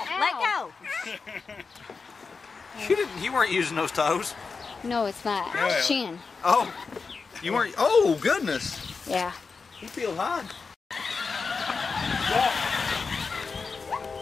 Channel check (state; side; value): quieter; right; 4.8 dB